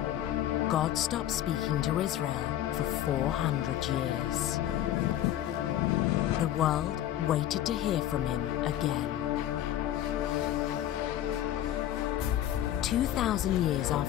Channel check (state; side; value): quieter; right; 12.2 dB